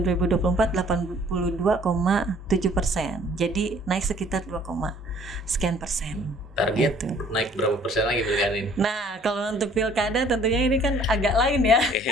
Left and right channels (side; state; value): both; normal; correlation 0.56